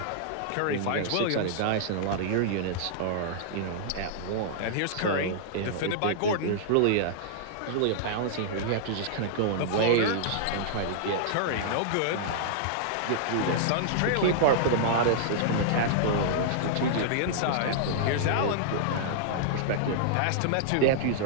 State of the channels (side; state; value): both; different; correlation -0.01